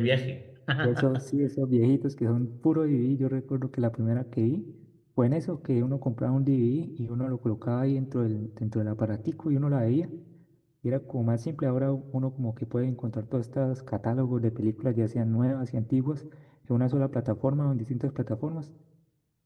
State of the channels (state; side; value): identical; both; correlation 1.00